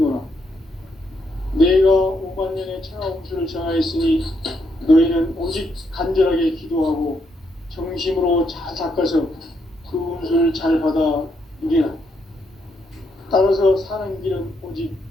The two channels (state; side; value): normal; both; correlation 0.77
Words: 내가 5만 년의 천하 운수를 정하였으니 너희는 오직 간절하게 기도하고 정심으로 잘 닦아서 그 운수를 잘 받아 누리라. 따라서 사는 길은 오직